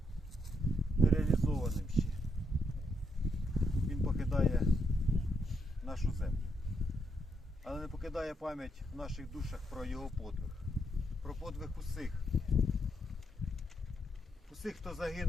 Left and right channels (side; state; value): both; normal; correlation 0.78